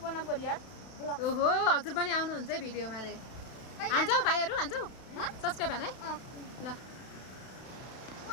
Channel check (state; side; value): late; right; 32 ms